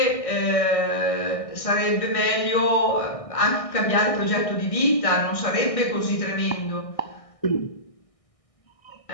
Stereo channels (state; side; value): late; right; 1.6 ms